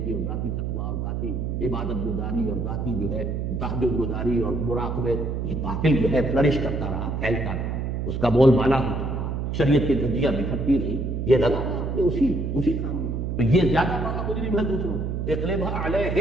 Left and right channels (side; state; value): right; noise; hum, 2 dB below the sound